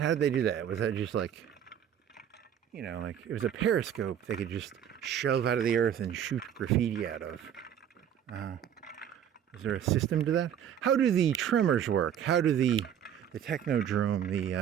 did they do that? Was that just like, you know, like it was a periscope they could just shove out of the earth and shoot graffiti out of? Is there a system to that? How do the tremors work? How do the technodrome,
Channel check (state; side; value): quieter; left; 9.5 dB